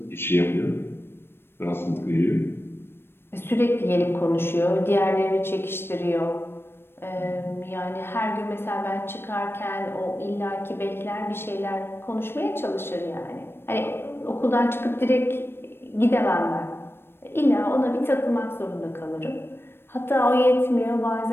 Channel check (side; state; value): right; late; 0.11 ms